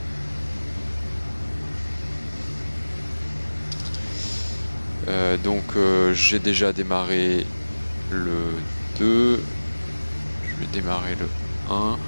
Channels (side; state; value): both; inverted; correlation -1.00